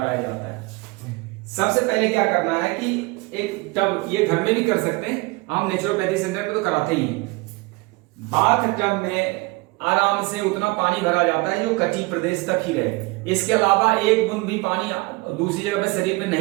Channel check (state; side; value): quieter; left; 24.3 dB